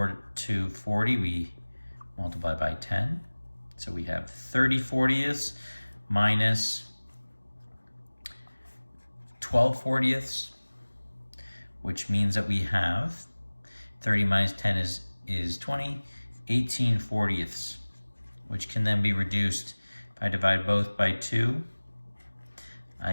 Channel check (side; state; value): both; inverted; correlation -1.00